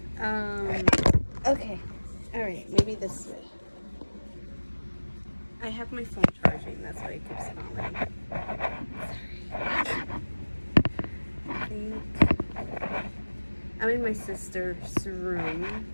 Okay, all right, maybe this way. I have my phone charging, that's why it keeps falling. Sorry. I think I'm in my sister's room,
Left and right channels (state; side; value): inverted; both; correlation -1.00